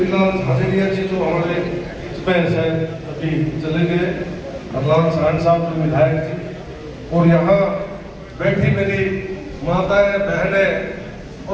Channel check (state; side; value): identical; both; correlation 1.00